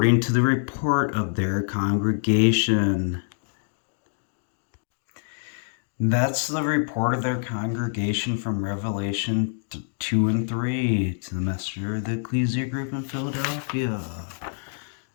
to the report of their congregation. That's the report of their congregation from Revelation 2 and 3, to the messenger of the ecclesia group in Philadelphia,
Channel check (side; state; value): right; silent; digital silence